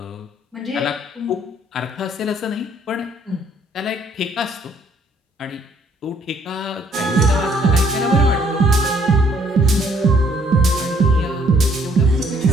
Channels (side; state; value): both; normal; correlation 0.65